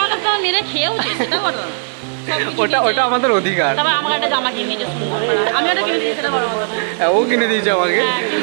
কাছে আমার মেরে খেয়েওছে, সেটা বলো। ওটা আমাদের অধিকার। তারপর আমাকে একটা জামা কিনে দিয়েছে সুন্দর, আমি ওটা কিনে দিয়েছি, সেটা বড় কথা না। ও কিনে দিয়েছে আমাকে।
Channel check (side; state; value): left; silent; digital silence